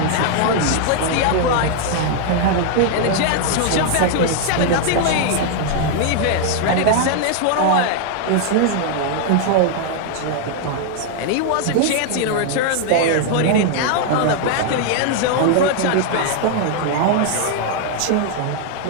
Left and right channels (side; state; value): both; different; correlation 0.00